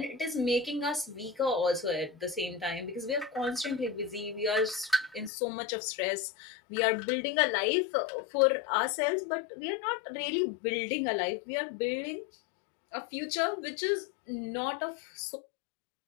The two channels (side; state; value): right; drops out; at 5.3 s